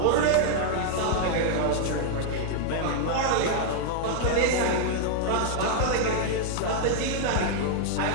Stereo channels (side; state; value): both; different; correlation 0.00